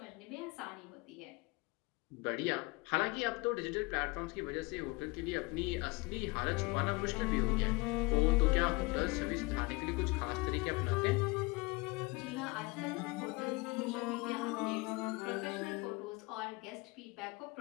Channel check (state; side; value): quieter; right; 25.3 dB